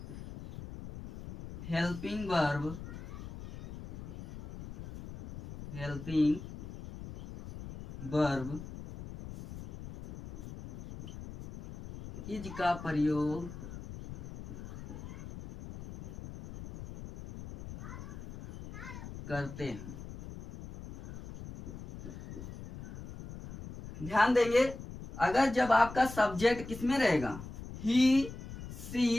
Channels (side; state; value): left; noise; rumble, 12 dB below the sound